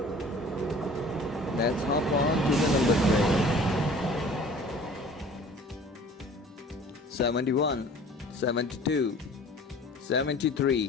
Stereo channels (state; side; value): normal; both; correlation 0.47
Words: Let's hop on to the number train. 71, 72,